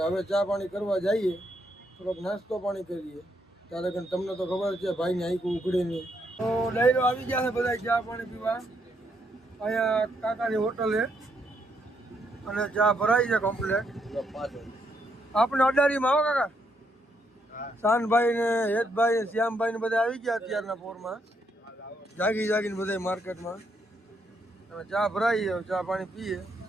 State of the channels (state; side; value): normal; both; correlation 0.76